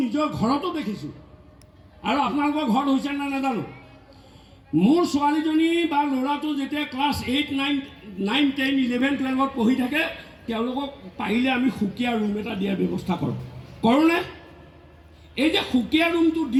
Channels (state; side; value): identical; both; correlation 1.00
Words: নিজৰ ঘৰতো দেখিছোঁ, আৰু আপোনালোকৰ ঘৰত হৈছে নে নাজানো। মোৰ ছোৱালীজনী বা ল'ৰাটো যেতিয়া ক্লাছ 8, 9, 10, 11, 12 পঢ়ি থাকে, তেওঁলোকক পাৰিলে আমি সুকীয়া ৰুম এটা দিয়াৰ ব্যৱস্থা কৰোঁনে? এই যে সুকীয়া ৰুমটো